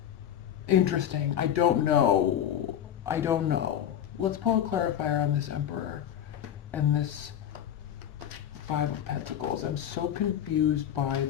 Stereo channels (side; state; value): right; quieter; 10.0 dB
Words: interesting. I don't know. Let's pull a clarifier on this Emperor and this Five of Pentacles. I'm so confused by